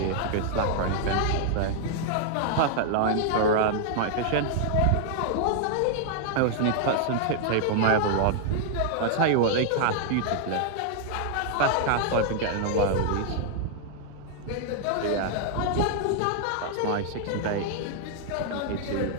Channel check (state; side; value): different; both; correlation -0.01